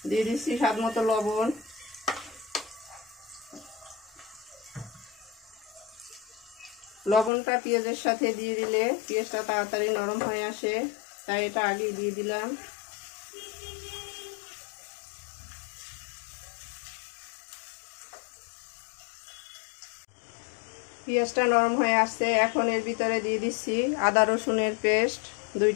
দিয়ে দিচ্ছি স্বাদ মতো লবণ। লবণটা পেঁয়াজের সাথে দিয়ে দিলে পেঁয়াজটা তাড়াতাড়ি নরম হয়ে আসে, তাই এটা আগে দিয়ে দিলাম। পেঁয়াজটা নরম হয়ে আসছে। এখন এর ভিতরে দিয়ে দিচ্ছি আদা রসুনের পেস্ট 2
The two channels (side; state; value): right; drops out; at 7.3 s